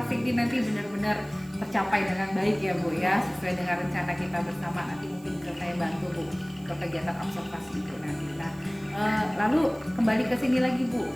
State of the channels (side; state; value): right; noise; hiss, 26 dB below the sound